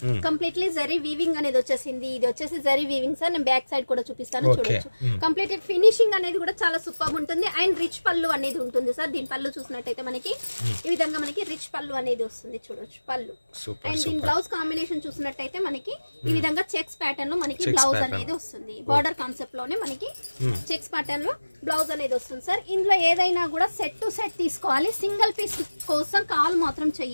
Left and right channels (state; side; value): inverted; both; correlation -1.00